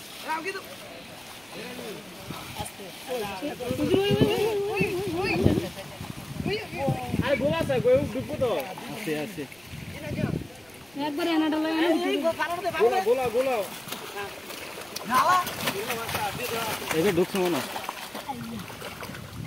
আরে গোলা আছে কই ডুবো তো আছে আছে একবার এনাটা লাগে গোলা গোলা গোলা নালা এবে ঢুকছ মনে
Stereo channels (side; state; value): right; noise; rumble, 30 dB below the sound